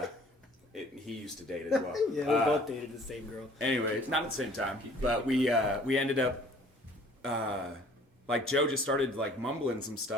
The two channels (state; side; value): normal; both; correlation 0.54